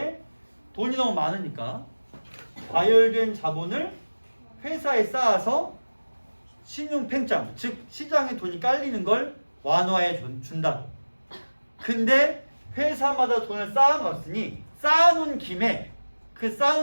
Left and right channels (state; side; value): inverted; both; correlation -1.00